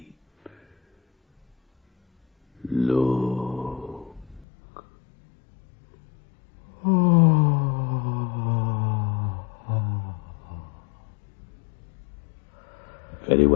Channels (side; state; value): right; drops out; at 4.5 s